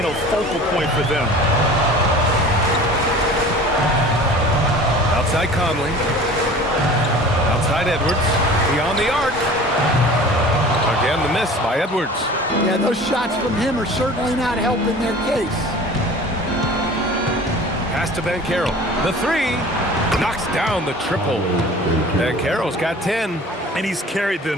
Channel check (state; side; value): normal; both; correlation 0.42